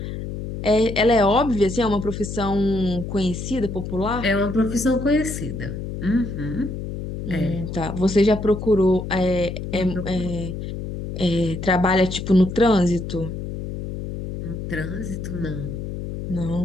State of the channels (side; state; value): left; noise; hum, 7 dB below the sound